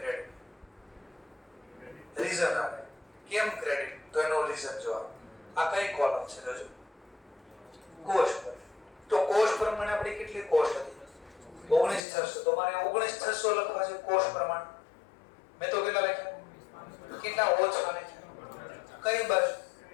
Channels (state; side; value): drops out; right; at 12.0 s